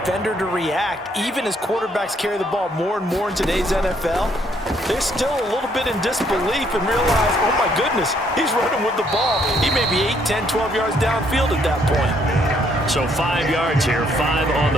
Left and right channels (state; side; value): normal; both; correlation 0.69